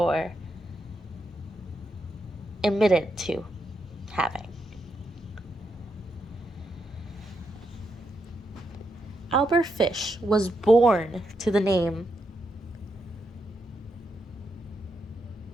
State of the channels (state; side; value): normal; both; correlation 0.82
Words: admitted to having. Albert Fish was born to the name